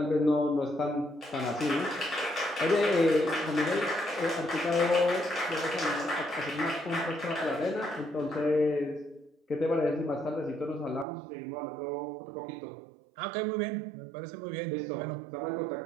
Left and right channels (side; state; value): left; drops out; at 11.1 s